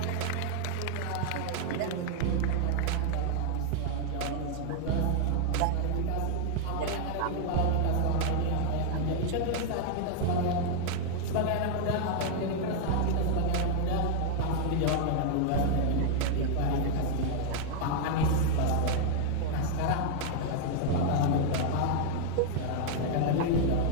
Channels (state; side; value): different; both; correlation 0.00